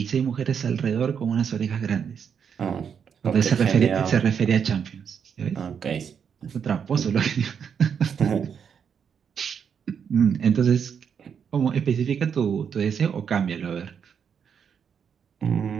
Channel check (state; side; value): quieter; left; 7.3 dB